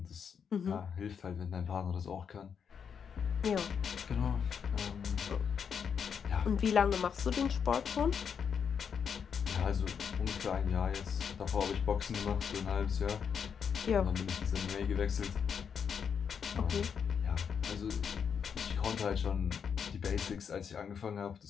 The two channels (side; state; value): right; quieter; 7.0 dB